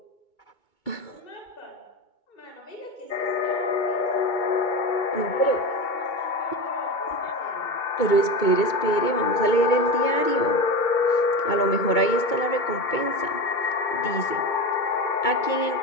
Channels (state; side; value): late; right; 2.2 ms